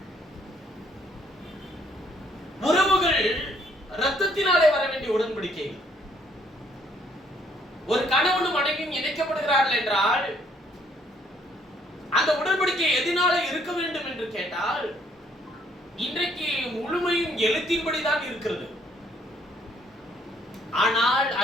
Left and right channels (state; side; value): normal; both; correlation 0.66